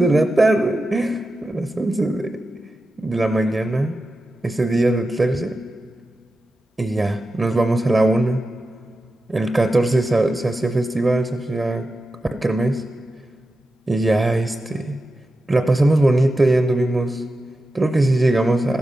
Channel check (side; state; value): both; normal; correlation 0.91